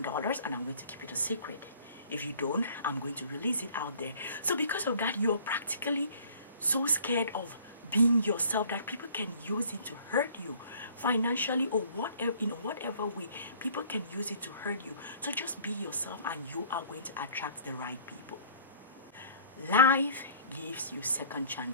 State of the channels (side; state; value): both; inverted; correlation -0.52